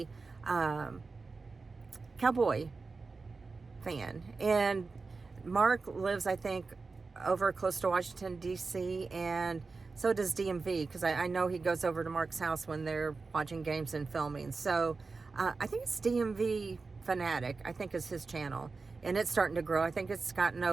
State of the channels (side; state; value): left; quieter; 4.2 dB